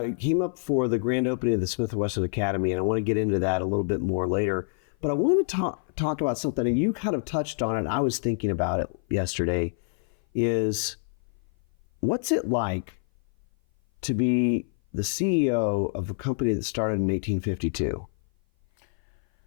came up for the grand opening of the Smith Wesson Academy, and I want to get into that a little bit more later. But I want to talk about something, and you kind of touched on it, and I was thinking about it yesterday, is what's it like to be the CEO of a company that started in 1852?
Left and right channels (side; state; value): right; silent; 57 dB below the other